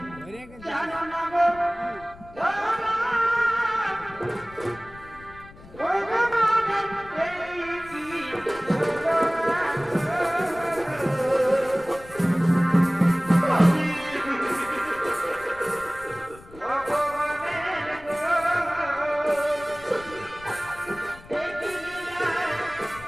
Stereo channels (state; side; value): noise; left; rumble, 20 dB below the sound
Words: জানো না গো জানো না ভগবানের প্রেমী